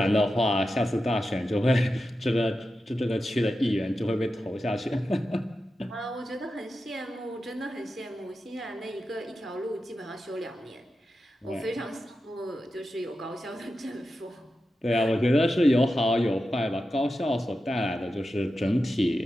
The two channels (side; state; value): both; normal; correlation 0.91